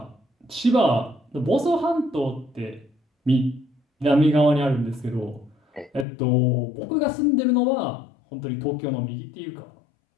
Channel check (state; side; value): drops out; right; at 6.1 s